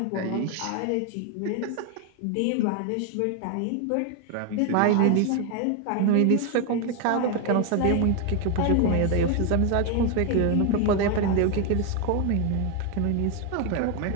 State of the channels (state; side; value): different; both; correlation 0.01